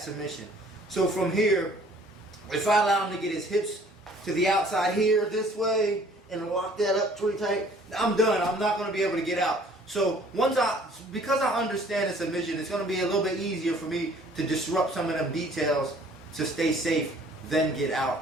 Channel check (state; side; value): normal; both; correlation 0.55